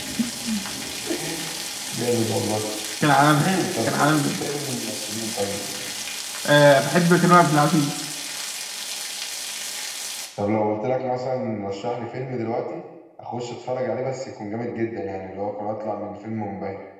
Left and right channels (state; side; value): identical; both; correlation 1.00